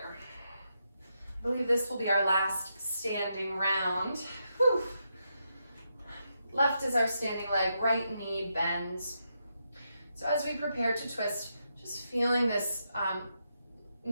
I believe this will be our last standing round. Whew. Left is our standing leg, right knee bends. So as we prepare to twist, just feeling this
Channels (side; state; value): both; inverted; correlation -0.83